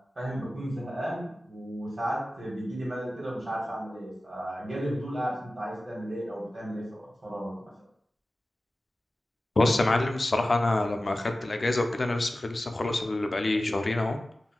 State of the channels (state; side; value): normal; both; correlation 0.96